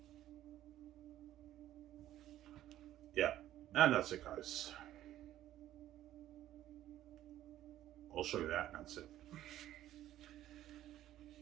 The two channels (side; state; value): left; quieter; 13.1 dB